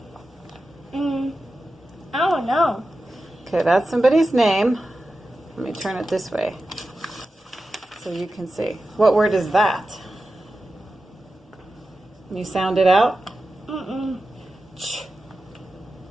I don't know. Okay, that's somebody's name. Let me turn it this way so you can see. What word is that? Can you sound it out? Ch.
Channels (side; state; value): both; normal; correlation 0.93